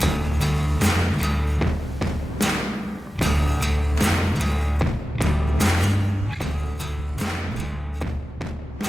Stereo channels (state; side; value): normal; both; correlation 0.94